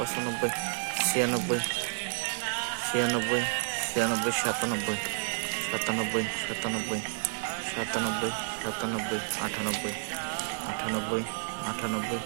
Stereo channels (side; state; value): left; silent; digital silence